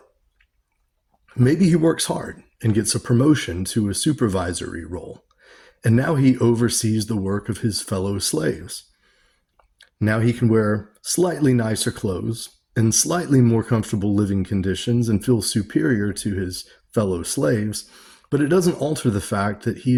Maybe he works hard and gets a promotion to a supervisory role, and now he oversees the work of his fellow slaves. Now he can wear slightly nicer clothes and slightly more comfortable living conditions and feel superior to his fellow slaves, but it doesn't alter the fact that he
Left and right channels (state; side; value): identical; both; correlation 1.00